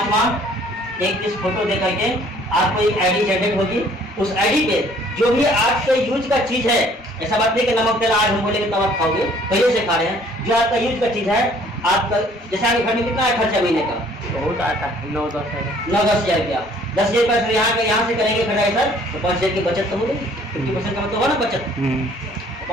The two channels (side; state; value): both; normal; correlation 0.58